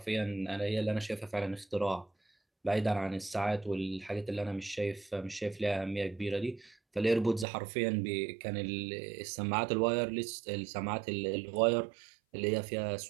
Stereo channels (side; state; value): left; drops out; at 7.5 s